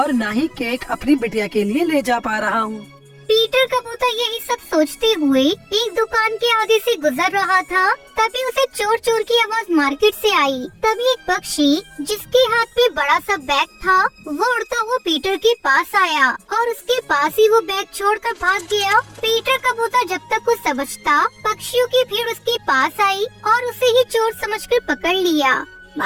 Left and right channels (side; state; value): both; identical; correlation 1.00